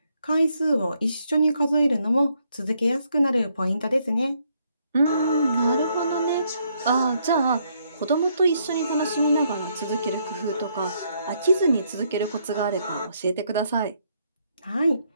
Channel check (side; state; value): both; inverted; correlation -0.73